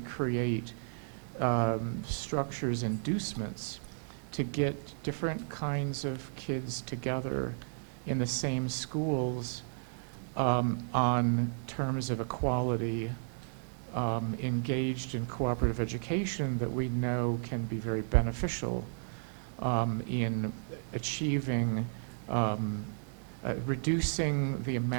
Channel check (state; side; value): silent; left; digital silence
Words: structures, inducements to get different kinds of kids together in the same schools on terms of equality, engaged in cooperative education that we know can be very beneficial in achieving, reducing the